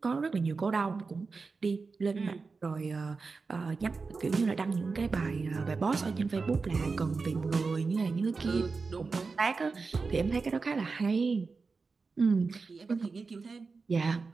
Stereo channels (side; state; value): left; quieter; 4.4 dB